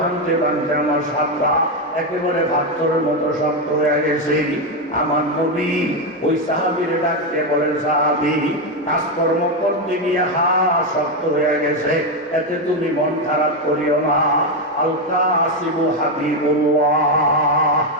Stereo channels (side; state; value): both; normal; correlation 0.07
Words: ভাঙতে আমার সাতটা একেবারে পাথরের মতো শক্ত হয়ে গেছে। আমার নবী ওই সাহাবীর ডাকতে বলেন, সাহাবী কাজকর্ম করতে গিয়ে শক্ত হয়ে গেছে, এতে তুমি মন খারাপ করিও না। আল কাসিবু হাবিবুল্লাহ।